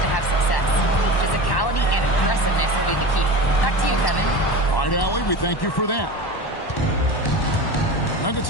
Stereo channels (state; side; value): late; right; 1.1 ms